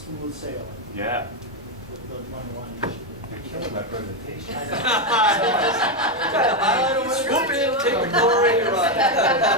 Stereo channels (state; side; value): normal; both; correlation 0.07